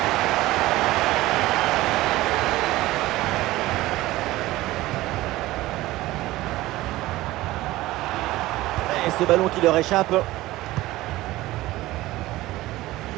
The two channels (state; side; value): quieter; left; 17.6 dB